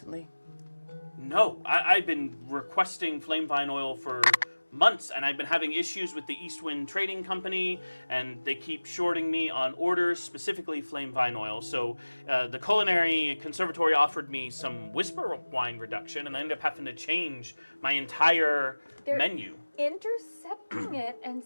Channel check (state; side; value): inverted; both; correlation -1.00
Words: No, I've been requesting flame vine oil for months, and I've been having issues with the Eastwind Trading Company, and they keep shorting me on orders, specifically flame vine oil. So the Culinary Conservatory offered me some whisper wine reduction, and I ended up having to change my entire menu. Intercepting it and